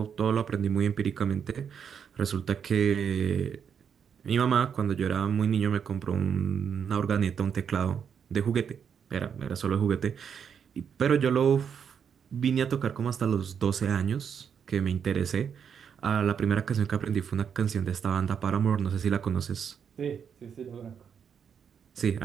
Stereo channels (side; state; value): left; quieter; 7.4 dB